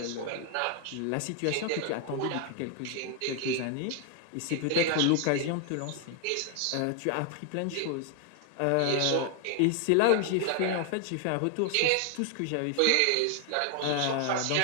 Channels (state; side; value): different; both; correlation 0.00